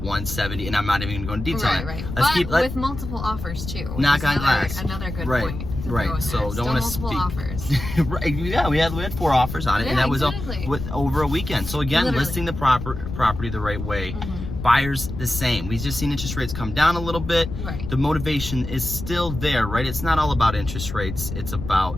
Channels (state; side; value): noise; left; rumble, 8 dB below the sound